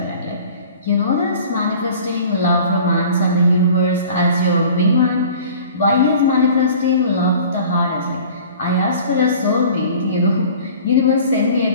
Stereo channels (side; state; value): both; inverted; correlation -0.45